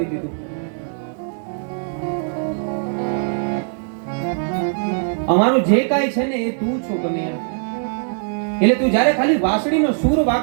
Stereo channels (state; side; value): silent; left; digital silence